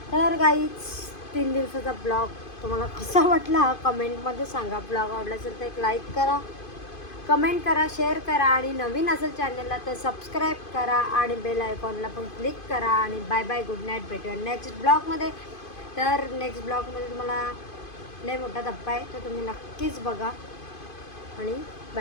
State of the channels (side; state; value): right; late; 2.5 ms